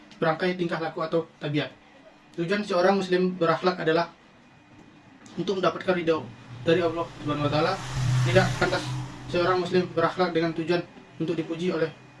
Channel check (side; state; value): both; identical; correlation 1.00